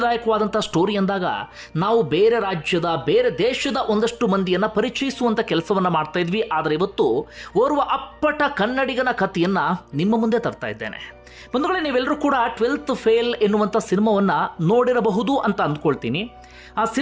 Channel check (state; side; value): identical; both; correlation 1.00